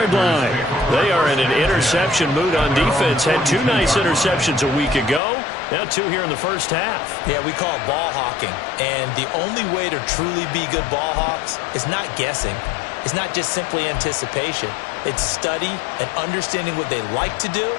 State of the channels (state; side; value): drops out; right; at 5.2 s